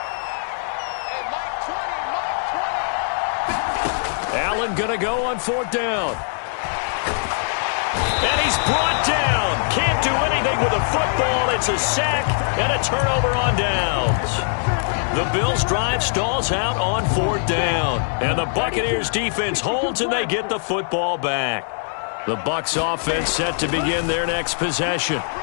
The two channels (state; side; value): silent; right; digital silence